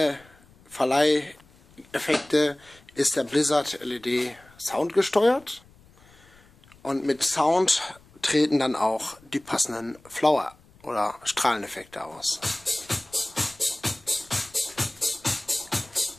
Verleiheffekte ist der Blizzard LED soundgesteuert und mit Sound treten dann auch die passenden Flower- oder Strahleneffekte aus.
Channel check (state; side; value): noise; left; rumble, 28 dB below the sound